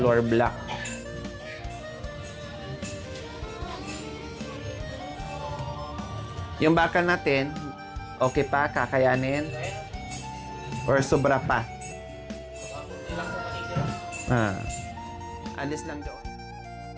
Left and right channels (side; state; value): both; identical; correlation 1.00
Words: black. Yung bakal natin, okay pa? Kakayanin? Or sobra pa? Alis lang doon.